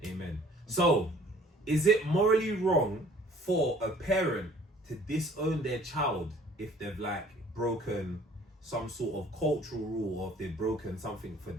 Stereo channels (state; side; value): normal; both; correlation 0.54